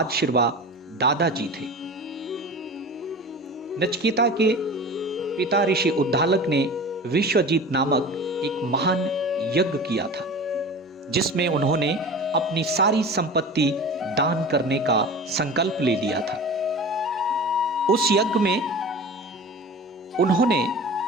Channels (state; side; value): normal; both; correlation 0.35